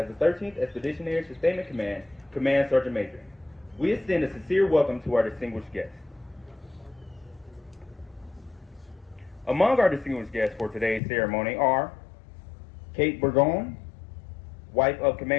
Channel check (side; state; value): right; drops out; at 11.0 s